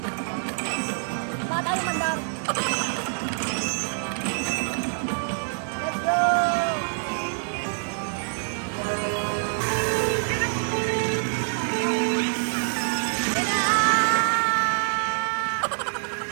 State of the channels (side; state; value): left; silent; digital silence